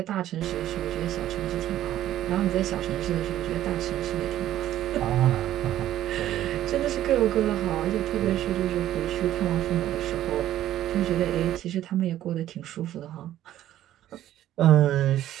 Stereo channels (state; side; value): quieter; left; 12.8 dB